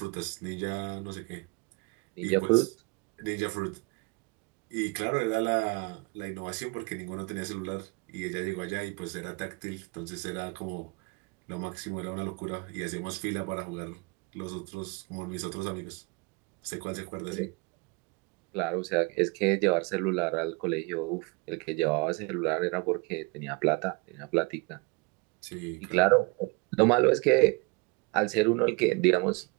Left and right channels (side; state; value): left; quieter; 29.2 dB